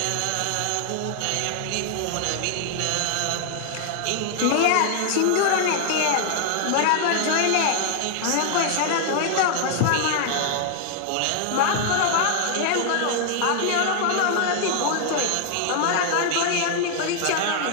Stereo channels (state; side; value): different; both; correlation 0.00